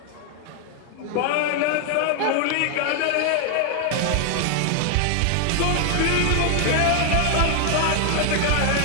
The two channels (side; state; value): both; different; correlation 0.00